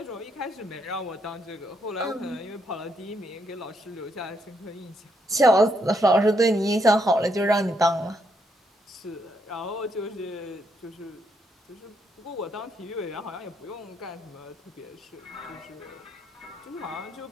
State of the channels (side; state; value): both; normal; correlation 0.76